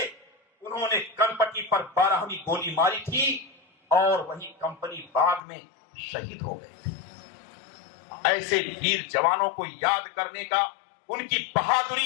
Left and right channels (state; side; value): drops out; right; at 5.4 s